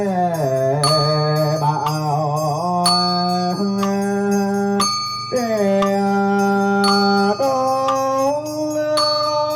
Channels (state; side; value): identical; both; correlation 1.00